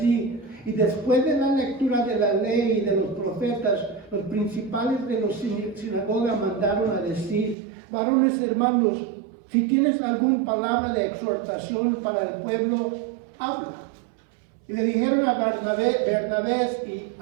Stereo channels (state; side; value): drops out; left; at 7.6 s